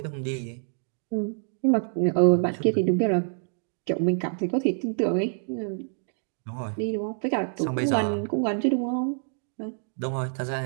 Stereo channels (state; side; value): silent; left; digital silence